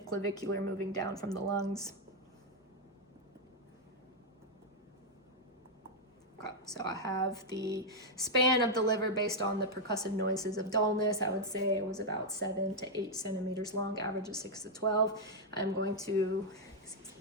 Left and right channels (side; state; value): both; normal; correlation -0.01